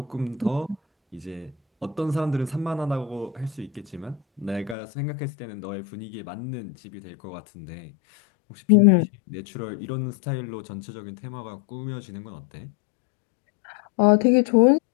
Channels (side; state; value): right; drops out; at 4.8 s